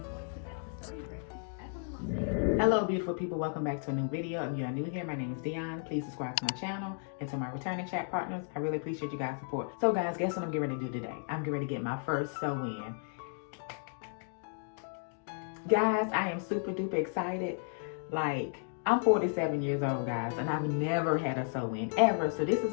Hello beautiful people, welcome back to a new video. If you are new here, my name is Dionne. Please subscribe to my channel and to my returning chat partners. I really appreciate you guys' support. So guys, guess what I'm getting ready to do today? I'm getting ready to get my first sew-in. Guys, I am super duper excited. Like, I'm 47 years old, guys, and I've never had a sew-in ever. So this is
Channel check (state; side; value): silent; right; 55 dB below the other